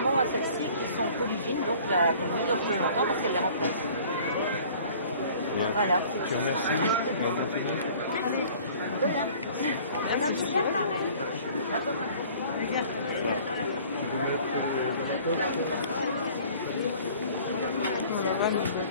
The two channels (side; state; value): both; inverted; correlation -0.50